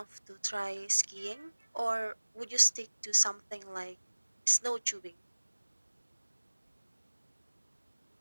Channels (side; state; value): both; inverted; correlation -1.00